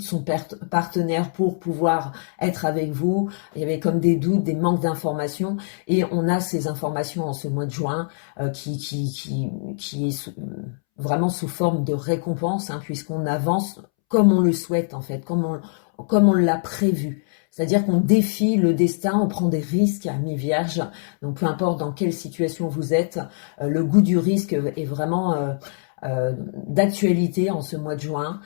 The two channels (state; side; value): silent; right; 63 dB below the other